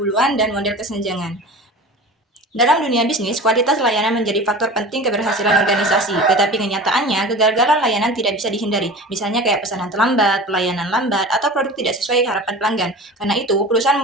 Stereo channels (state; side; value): normal; both; correlation 0.36